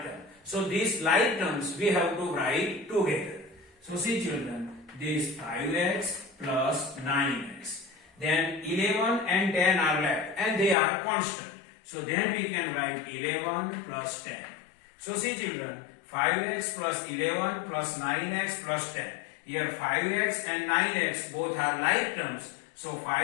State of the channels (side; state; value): right; drops out; at 10.8 s